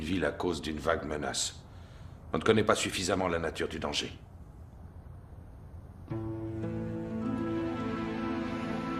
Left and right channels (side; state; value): both; identical; correlation 1.00